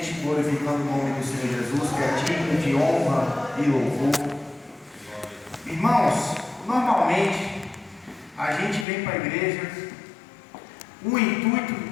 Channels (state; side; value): drops out; right; at 8.8 s